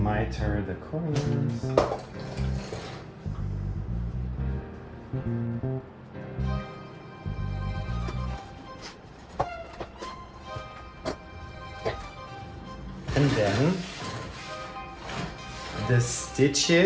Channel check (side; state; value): both; identical; correlation 1.00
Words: miter the corners. And then the